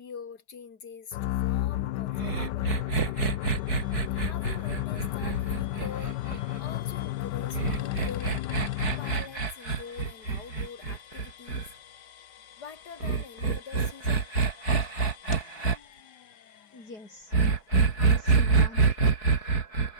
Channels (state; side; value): late; right; 4.6 ms